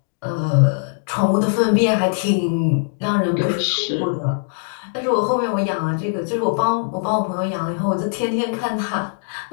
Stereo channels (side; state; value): right; silent; digital silence